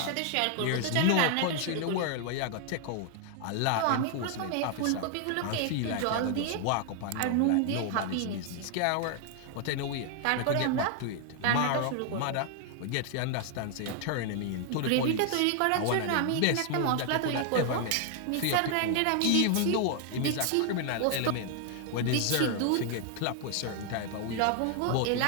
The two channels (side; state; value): both; different; correlation 0.00